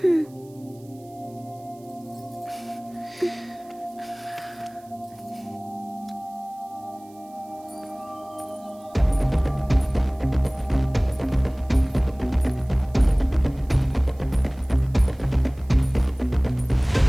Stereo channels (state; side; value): noise; right; hiss, 28 dB below the sound